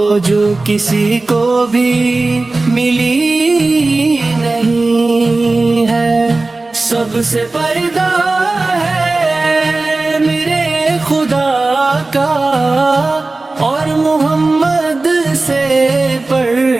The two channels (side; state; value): left; quieter; 3.3 dB